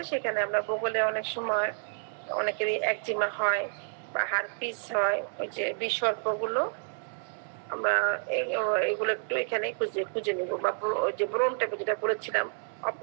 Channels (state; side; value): silent; left; digital silence